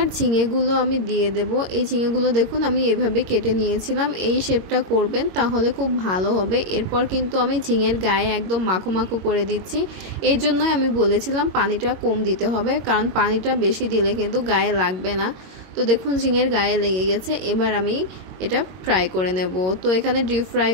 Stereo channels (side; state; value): left; late; 22 ms